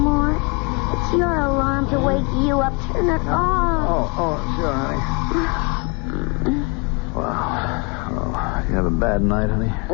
It's your alarm to wake you up. Turn it off. Oh, sure, honey. Wow. Oh, you have a bad night, honey?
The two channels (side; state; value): right; quieter; 29.8 dB